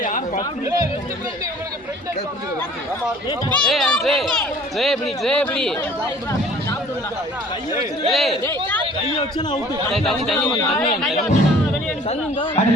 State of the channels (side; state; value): both; normal; correlation 0.52